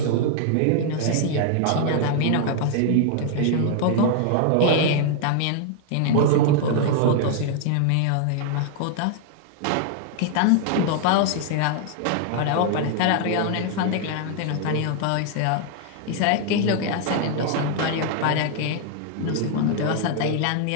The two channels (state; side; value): different; both; correlation 0.00